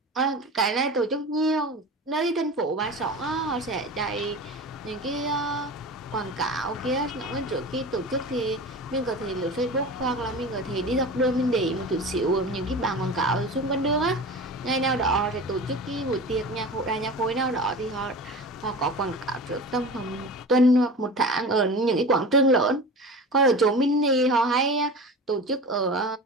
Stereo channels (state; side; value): normal; both; correlation 0.33